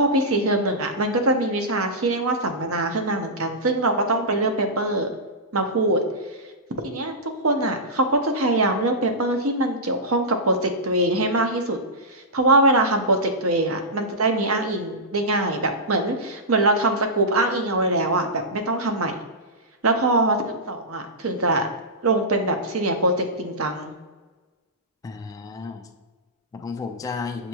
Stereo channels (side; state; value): both; normal; correlation -0.14